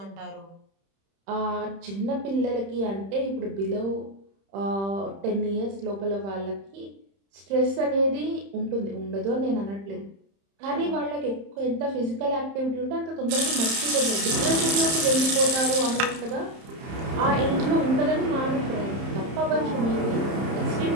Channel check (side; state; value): left; late; 31 ms